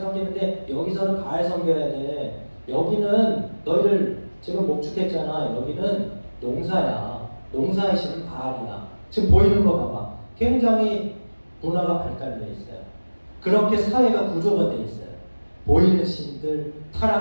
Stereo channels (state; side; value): inverted; both; correlation -1.00